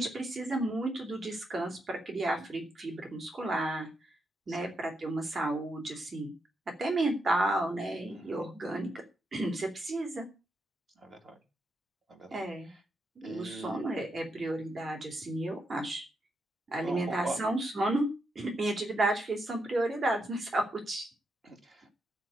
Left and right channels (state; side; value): normal; both; correlation 0.82